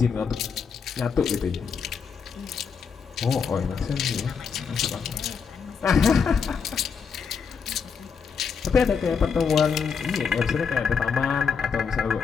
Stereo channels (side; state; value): right; quieter; 6.1 dB